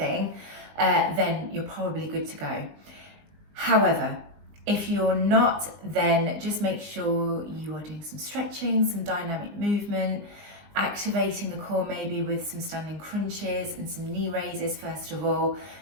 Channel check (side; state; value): left; late; 20 ms